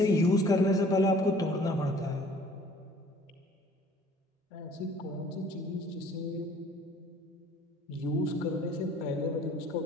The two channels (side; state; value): both; normal; correlation 0.53